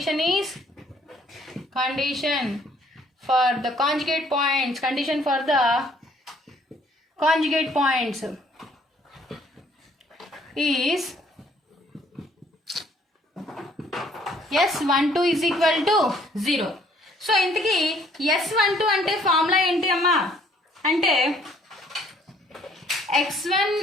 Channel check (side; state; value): both; normal; correlation 0.62